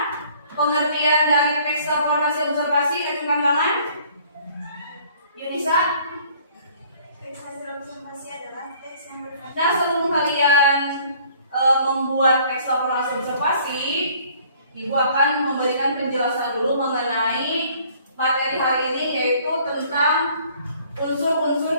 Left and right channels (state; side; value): inverted; both; correlation -0.56